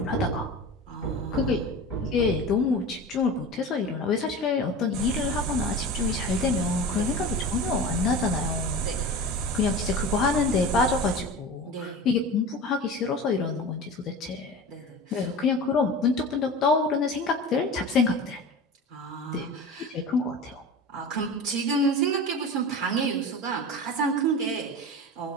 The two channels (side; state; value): both; normal; correlation 0.32